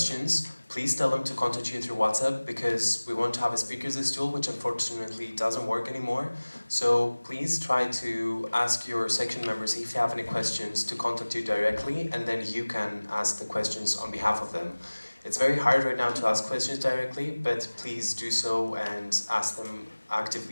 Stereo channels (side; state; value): both; inverted; correlation -1.00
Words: please tell them to contact you through WhatsApp, because we want to have a speakers list tool, which unfortunately doesn't work anymore. So please try to ask your section members if you have any questions to contact you directly, and then you can ask the questions on behalf of them. It's very hard right now to ask questions directly, but please do so and ask them